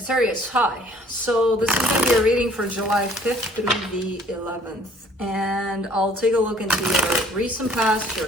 hi. So this is going to be a reading for July 5th through the 11th. And I'll take a look into your recent past,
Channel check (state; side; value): normal; both; correlation 0.57